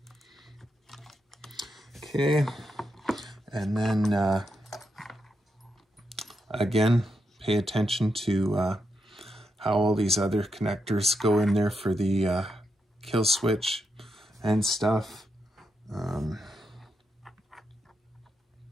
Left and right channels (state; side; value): normal; both; correlation 0.84